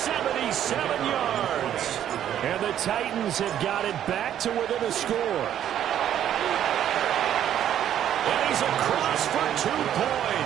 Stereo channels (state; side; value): quieter; left; 10.6 dB